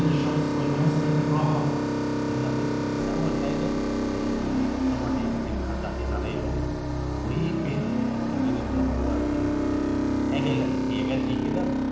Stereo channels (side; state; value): both; identical; correlation 1.00